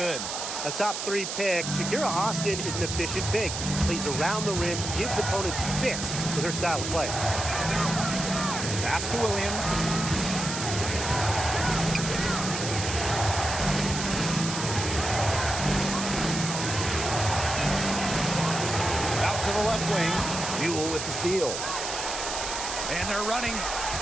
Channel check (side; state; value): right; noise; hiss, 4 dB below the sound